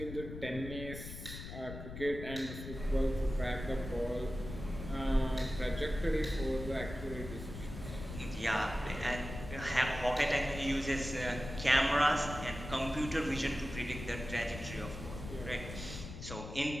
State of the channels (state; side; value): noise; left; rumble, 9 dB below the sound